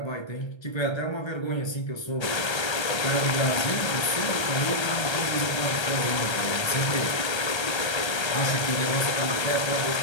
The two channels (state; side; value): late; right; 1.3 ms